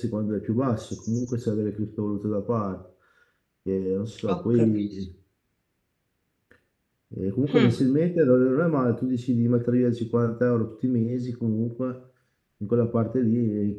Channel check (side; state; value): both; identical; correlation 1.00